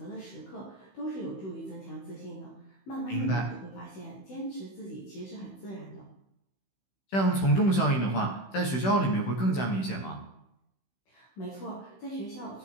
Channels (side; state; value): right; late; 16 ms